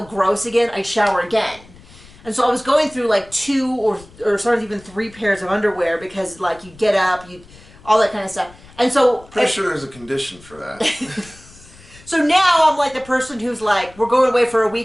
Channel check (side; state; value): left; noise; rumble, 23 dB below the sound